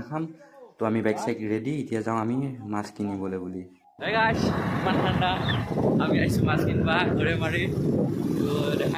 খাম তো আমি বাইক সাইক ৰেডি এতিয়া যাওঁ আমি মাছ কিনিবলৈ বুলি Hey guys, ইমান ঠাণ্ডা আমি আইছো মাছ কিনবা ঘৰে মাৰি তো দেখা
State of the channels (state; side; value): identical; both; correlation 1.00